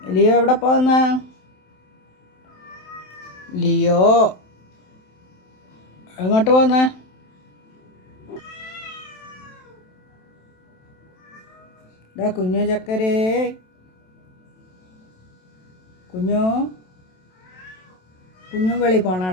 ലിയോ എവിടെ പോകുന്നേ? ലിയോ എങ്ങോട്ട് പോകുന്നേ? ഡാ കുഞ്ഞു ചക്കരേ, കുഞ്ഞു വെളി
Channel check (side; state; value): right; late; 27 ms